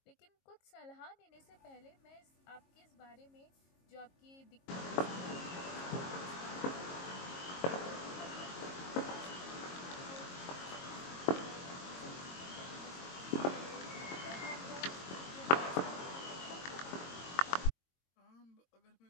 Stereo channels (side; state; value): right; late; 22 ms